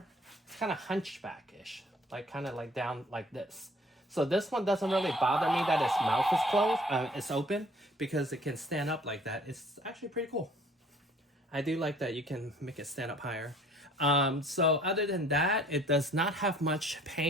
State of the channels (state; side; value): normal; both; correlation 0.55